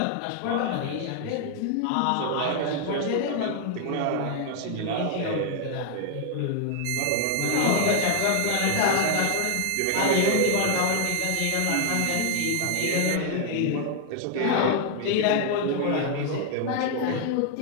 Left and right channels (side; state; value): both; different; correlation 0.00